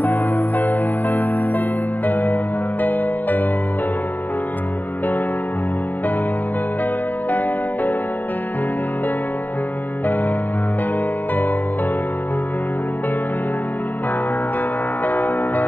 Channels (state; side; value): late; right; 0.086 ms